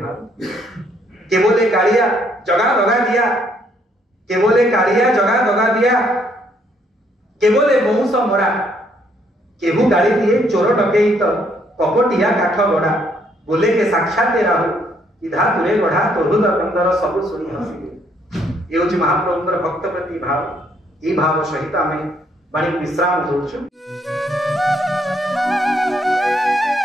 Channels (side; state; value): both; normal; correlation 0.69